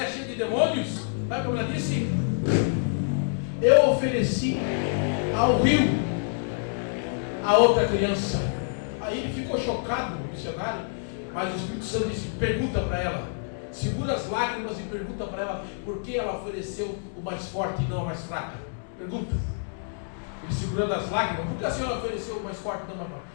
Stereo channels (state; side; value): silent; right; digital silence